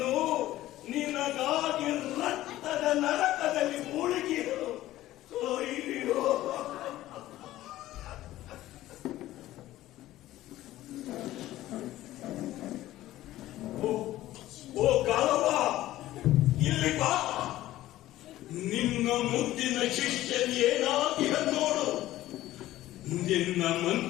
ನಿನಗಾಗಿ ರಕ್ತದ ನರಕದಲ್ಲಿ ಮುಳುಗಿರು. ಅಯ್ಯೋ ಓ ಗಾಲವ, ಇಲ್ಲಿ ಬಾ. ನಿನ್ನ ಮುದ್ದಿನ ಶಿಷ್ಯನ್ ಏನಾಗಿರ ನೋಡು. ನಿನ್ನ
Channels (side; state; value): right; quieter; 15.1 dB